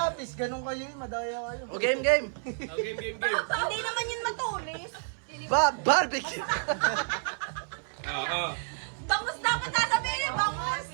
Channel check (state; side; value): silent; left; 58 dB below the other